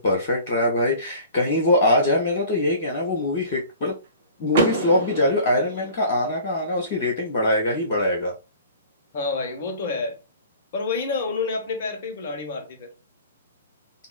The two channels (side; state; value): both; inverted; correlation -0.45